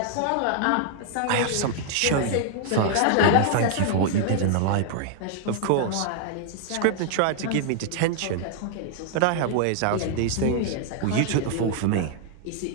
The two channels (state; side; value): different; both; correlation 0.00